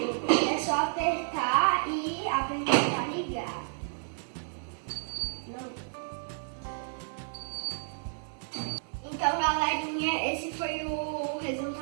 É só apertar e apertar ligar. Não. Então galerinha, esse foi o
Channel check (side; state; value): left; silent; digital silence